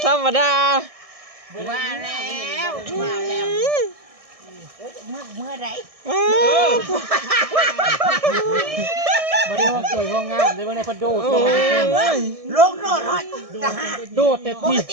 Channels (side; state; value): left; late; 1.6 ms